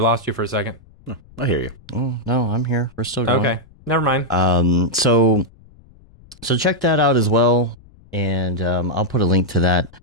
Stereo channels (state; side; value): noise; left; rumble, 26 dB below the sound